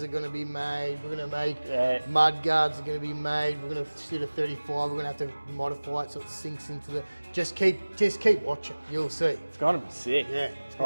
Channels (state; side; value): inverted; both; correlation -1.00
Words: are going to be made. We're going to make mud guards are going to be made. We're going to shoot a 35. We're going to have to modify it so it sinks into the... Just keep watching. You'll see. It's going to be sick. Yeah.